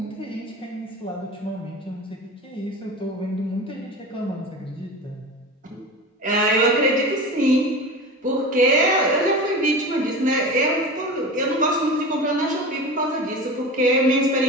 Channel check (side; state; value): both; normal; correlation 0.31